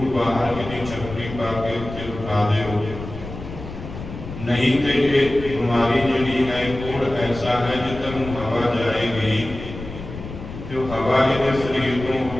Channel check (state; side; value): noise; left; rumble, 11 dB below the sound